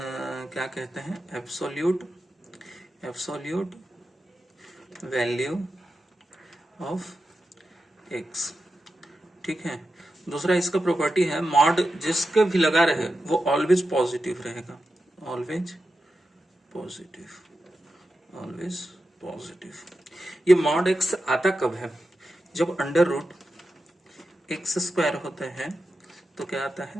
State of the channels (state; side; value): normal; both; correlation 0.90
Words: कहते हैं, एब्सोल्यूट वैल्यू ऑफ एक्स, ठीक है। दूसरा इसका प्रॉपर्टी है मॉड जिसके भी लगा रहे वो ऑलवेज पॉजिटिव रहेगा, ऑलवेज पॉजिटिव। ये मॉड एक्स आता कब है, जब अंडर रूट एक्स स्क्वायर होता है तो क्या आता